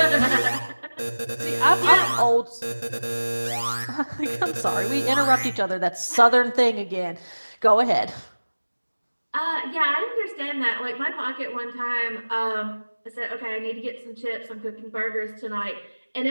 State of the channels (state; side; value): inverted; both; correlation -1.00